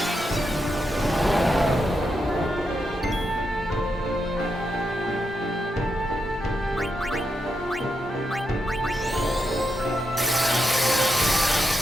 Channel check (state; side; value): normal; both; correlation 0.84